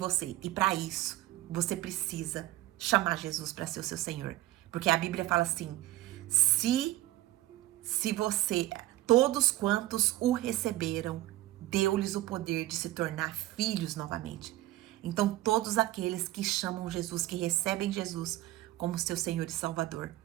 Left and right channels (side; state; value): left; quieter; 16.5 dB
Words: E para isso, você precisa chamar Jesus para ser o seu Senhor. Porque a Bíblia fala assim, se você, todos quantos o receberam, deu-lhes o poder de se tornar filhos novamente. Então, todos aqueles que chamam Jesus, que recebem Jesus como seu Senhor e Salvador,